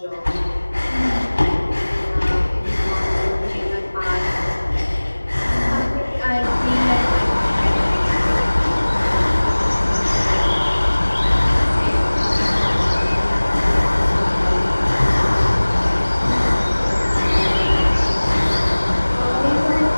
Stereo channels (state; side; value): inverted; both; correlation -1.00